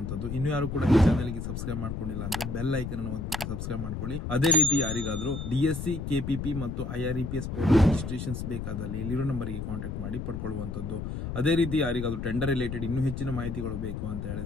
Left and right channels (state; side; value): noise; left; rumble, 5 dB below the sound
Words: ಇನ್ನು ಯಾರು ಕೂಡ ಈ ಚಾನೆಲ್ ಗೆ ಸಬ್ಸ್ಕ್ರೈಬ್ ಮಾಡ್ಕೊಂಡಿಲ್ಲ ಅಂದ್ರೆ ಬೆಲ್ ಐಕನ್ ಅನ್ನು ಒತ್ತಿಬಿಟ್ಟು ಸಬ್ಸ್ಕ್ರೈಬ್ ಮಾಡ್ಕೊಳ್ಳಿ. ಅದೇ ರೀತಿ ಯಾರಿಗಾದ್ರೂ DSC, KPP ಮತ್ತು IREPS ರಿಜಿಸ್ಟ್ರೇಷನ್ಸ್ ಬೇಕಾದಲ್ಲಿ ಇಲ್ಲಿರೋ ನಂಬರ್ ಗೆ ಕಾಂಟ್ಯಾಕ್ಟ್ ಮಾಡಿ ಪಡ್ಕೊಳ್ಳುವಂತದ್ದು. ಅದೇ ರೀತಿ ಯಾರಿಗಾದ್ರೂ ಟೆಂಡರ್ ರಿಲೇಟೆಡ್ ಇನ್ನೂ ಹೆಚ್ಚಿನ ಮಾಹಿತಿಗಳು ಬೇಕು ಅಂತ